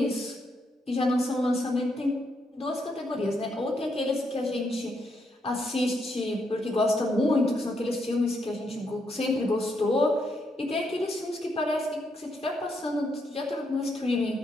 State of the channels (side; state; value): both; normal; correlation 0.78